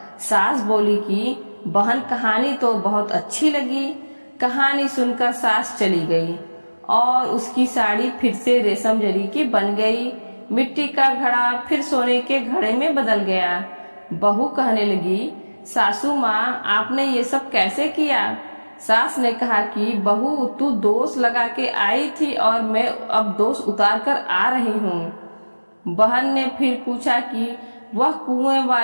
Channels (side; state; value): both; inverted; correlation -1.00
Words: सास बोली कि बहन, कहानी तो बहुत अच्छी लगी। कहानी सुनकर सास चली गई और उसकी साड़ी फिर से रेशम जरी की बन गई। मिट्टी का घड़ा फिर सोने के घड़े में बदल गया। बहू कहने लगी, सासू माँ, आपने ये सब कैसे किया। सास ने कहा कि बहू, तू दोष लगा के आई थी और मैं अब दोष उतार कर आ रही हूँ। बहन ने फिर पूछा कि वह कुएं